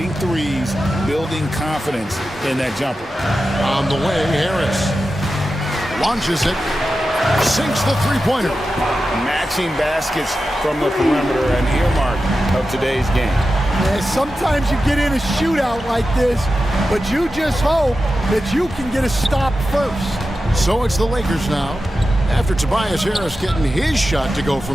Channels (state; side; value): normal; both; correlation 0.92